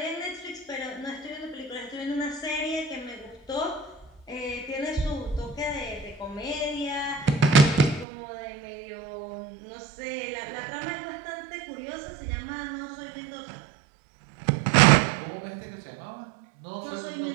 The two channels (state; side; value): drops out; left; at 8.1 s